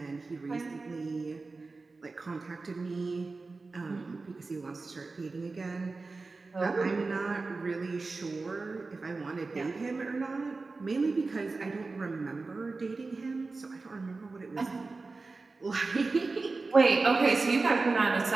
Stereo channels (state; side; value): quieter; left; 3.8 dB